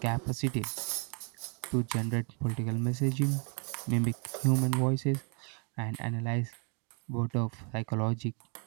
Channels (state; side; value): quieter; left; 37.9 dB